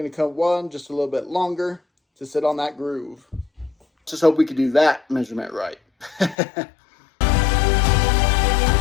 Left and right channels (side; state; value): right; drops out; at 6.4 s